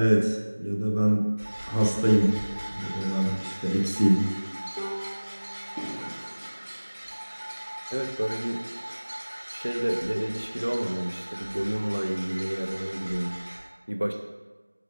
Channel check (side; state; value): both; inverted; correlation -1.00